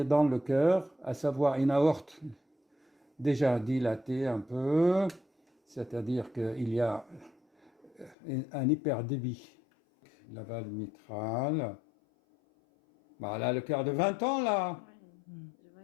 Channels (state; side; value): drops out; right; at 8.2 s